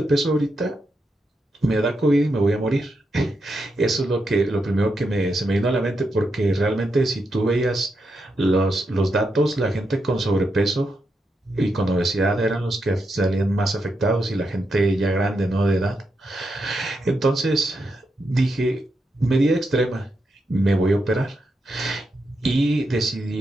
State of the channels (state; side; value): normal; both; correlation 0.84